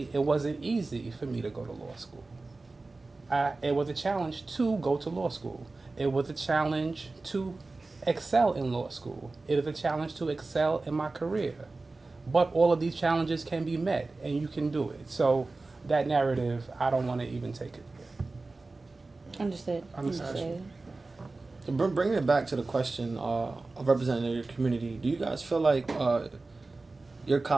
it wasn't easy for me to go to law school. It was a challenge to go to law school. It was a challenge to excel in law school. It is a challenge to excel in my career. But all of these challenges can be met, and you can do it. So that narrative, I don't want to even take it there. Understood. So bringing it back to the question of representing your community, do you guys feel like your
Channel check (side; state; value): left; quieter; 3.5 dB